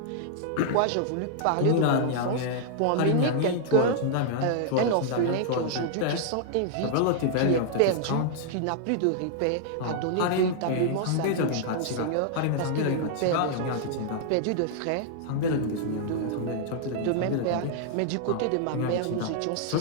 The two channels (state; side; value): different; both; correlation -0.01